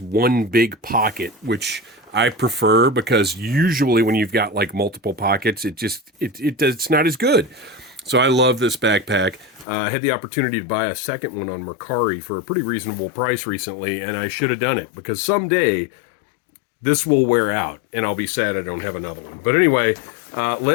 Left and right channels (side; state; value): right; drops out; at 9.7 s